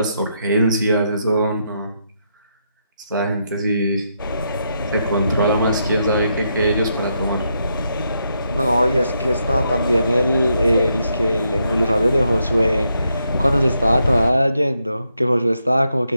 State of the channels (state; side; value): inverted; both; correlation -0.80